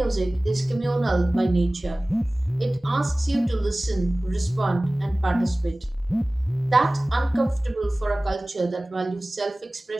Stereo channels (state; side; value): normal; both; correlation 0.98